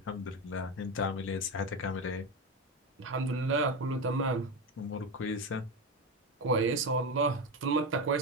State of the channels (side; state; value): both; normal; correlation 0.16